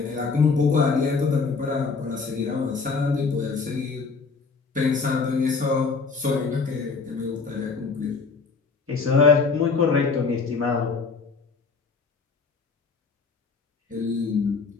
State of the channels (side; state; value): right; quieter; 4.6 dB